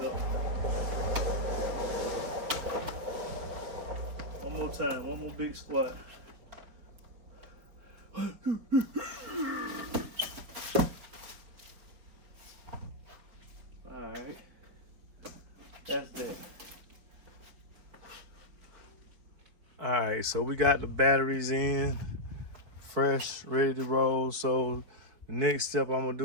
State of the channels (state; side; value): late; left; 4.5 ms